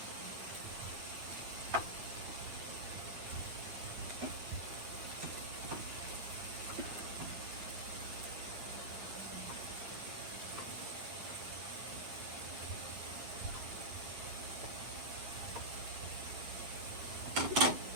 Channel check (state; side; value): late; left; 9.1 ms